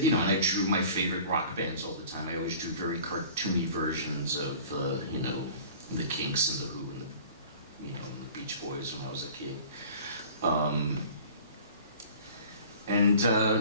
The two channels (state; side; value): inverted; both; correlation -0.45